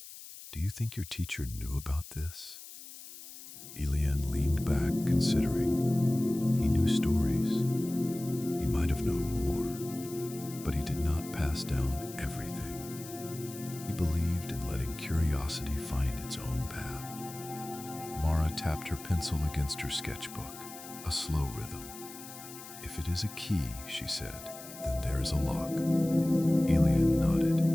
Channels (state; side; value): noise; left; hiss, 15 dB below the sound